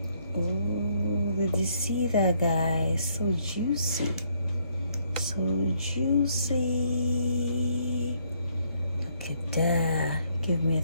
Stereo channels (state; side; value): inverted; both; correlation -0.70